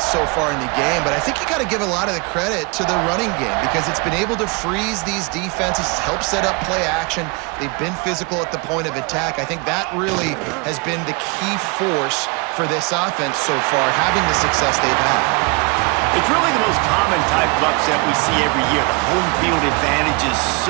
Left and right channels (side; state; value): left; quieter; 29.9 dB